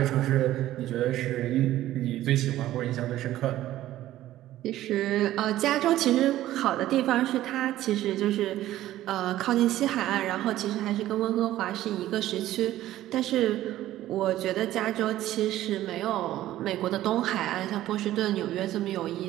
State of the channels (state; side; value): quieter; left; 14.2 dB